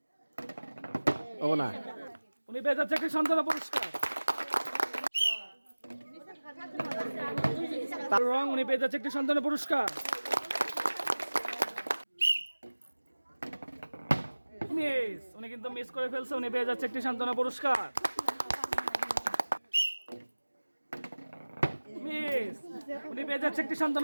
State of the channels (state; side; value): inverted; both; correlation -1.00